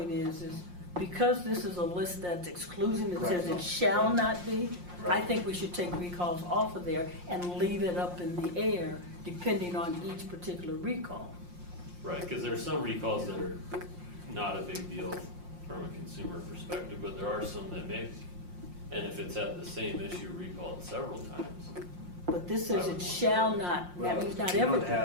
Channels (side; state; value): left; late; 5.6 ms